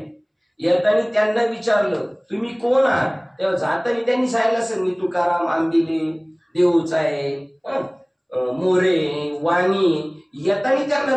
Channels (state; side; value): identical; both; correlation 1.00